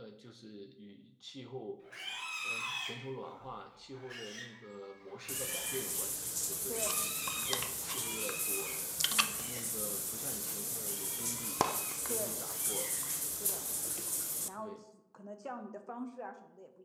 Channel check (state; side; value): identical; both; correlation 1.00